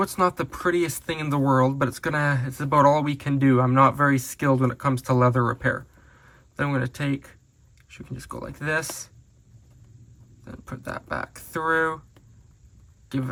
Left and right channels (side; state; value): both; identical; correlation 1.00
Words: it's not the prettiest thing in the world, but it's about all we can do. I'm not very skilled when it comes to leather repair. Then I'm going to take, you can just go like this. Then put that back through. Give